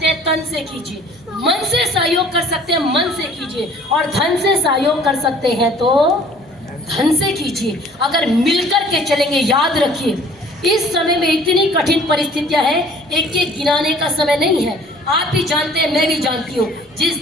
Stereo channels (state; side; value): normal; both; correlation 0.52